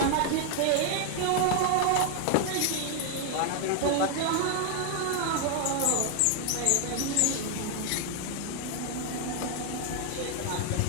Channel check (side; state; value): both; different; correlation 0.00